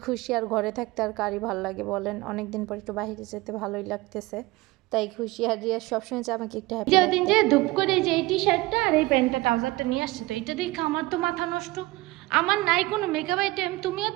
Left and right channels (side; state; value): left; quieter; 20.5 dB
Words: খুশি। আর ঘরে থাকতে আর কারই ভালো লাগে বলেন? অনেক দিন পর একটু বাইরে যেতে ভালোই লাগতেছে, তাই খুশি। আর রিয়া সবসময় যে আমাকে একটু হ্যাপি যে দিন যে ধূপ করে যে এই টি শার্টটা আর এই প্যান্টটা ট্রাউজারটা নিয়ে আসছে, তো এটা দেখে আমার তো মাথা নষ্ট। আমার নাই কোনো মেকআপ আইটেম, তুমিও